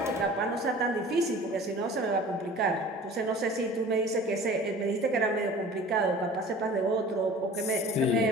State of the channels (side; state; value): both; normal; correlation 0.43